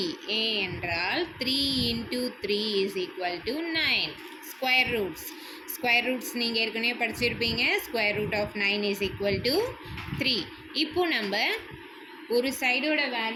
A என்றால் 3 into 3 is equal to 9. Square roots நீங்கள் ஏற்கனவே படிச்சிருப்பீங்க. Square root of 9 is equal to 3. இப்போ நம்ம ஒரு சைடோட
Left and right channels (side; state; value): both; identical; correlation 1.00